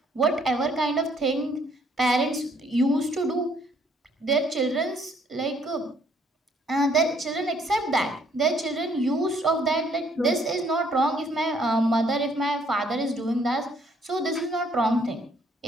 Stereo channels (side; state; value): both; normal; correlation 0.65